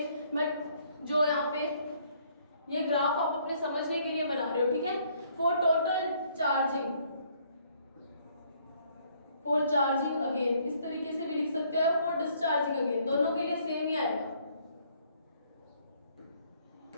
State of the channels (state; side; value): inverted; both; correlation -0.65